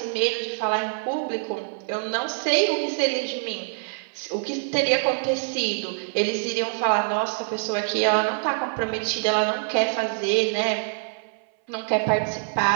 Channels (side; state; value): left; silent; 62 dB below the other